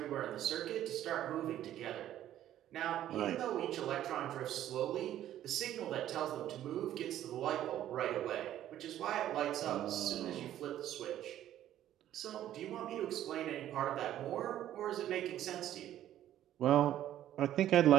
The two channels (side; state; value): left; quieter; 12.2 dB